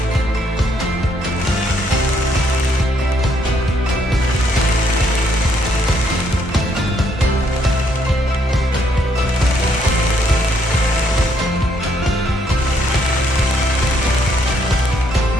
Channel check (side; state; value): both; normal; correlation 0.71